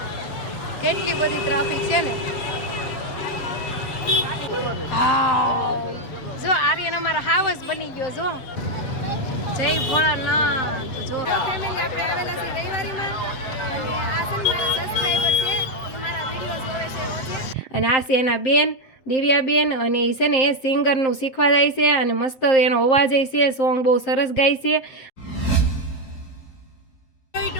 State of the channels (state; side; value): late; right; 7.6 ms